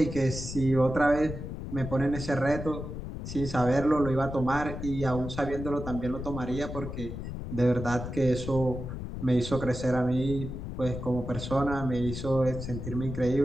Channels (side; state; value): left; noise; rumble, 7 dB below the sound